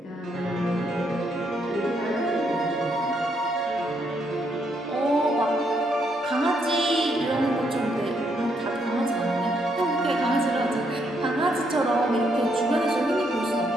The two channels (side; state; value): both; normal; correlation 0.75